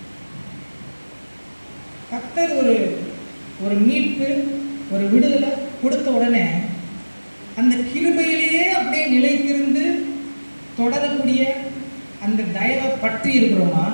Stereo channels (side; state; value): both; inverted; correlation -1.00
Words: கர்த்தர் ஒரு மீட்பு, ஒரு விடுதலை கொடுத்த உடனே அந்த கிருபையிலேயே அப்படியே நிலைத்திருந்து தொடரக்கூடிய அந்த தயவை பற்றி இருக்கிறோமா?